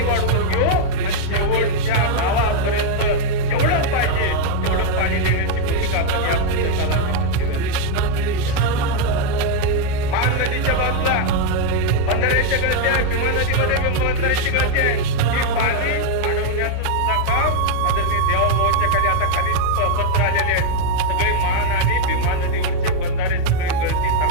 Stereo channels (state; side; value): different; both; correlation 0.00